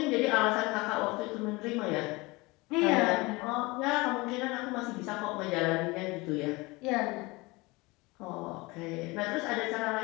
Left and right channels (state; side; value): quieter; right; 23.7 dB